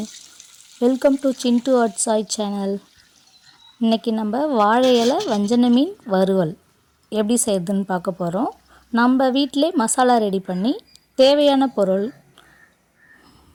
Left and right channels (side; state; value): both; identical; correlation 1.00